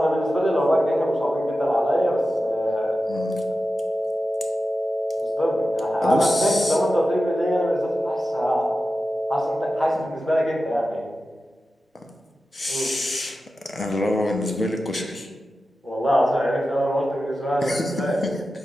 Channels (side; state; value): both; normal; correlation 0.93